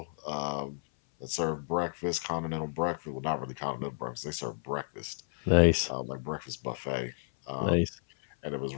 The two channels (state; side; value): silent; right; 57 dB below the other